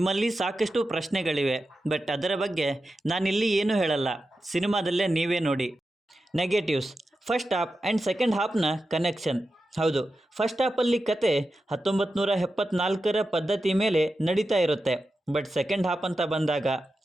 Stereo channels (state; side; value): normal; both; correlation 0.91